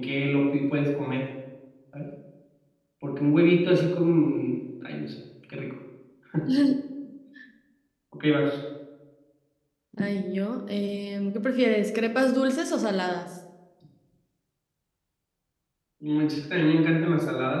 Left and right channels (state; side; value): identical; both; correlation 1.00